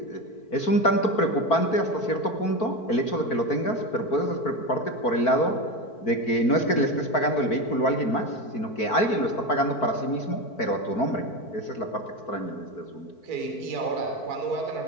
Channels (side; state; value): right; late; 4.5 ms